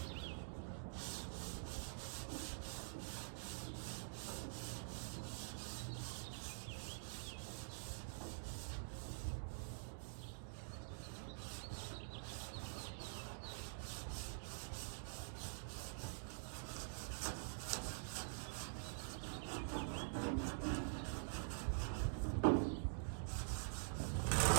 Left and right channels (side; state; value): left; silent; digital silence